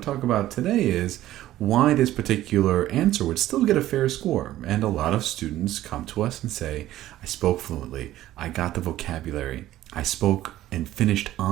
to talk about today is why this particular answer would still get a fair score. And a lot of students come to us and say, I spoke fluently, I got the vocabulary, I spoke and finished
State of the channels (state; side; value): quieter; left; 14.2 dB